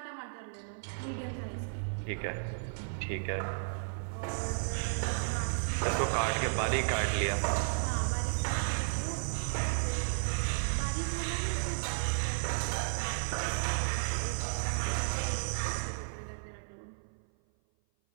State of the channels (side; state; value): left; silent; 55 dB below the other